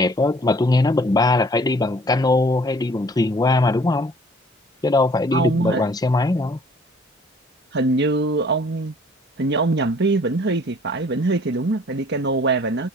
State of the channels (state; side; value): normal; both; correlation 0.55